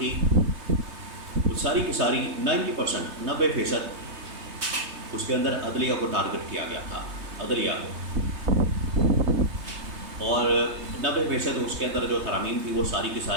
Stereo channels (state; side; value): late; left; 3.2 ms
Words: وہ ساری کی ساری 90%، 90% اس کے اندر عدلیہ کو ٹارگٹ کیا گیا تھا، عدلیہ کو، اور 90% اس کے اندر جو ترامیم تھی وہ ساری کی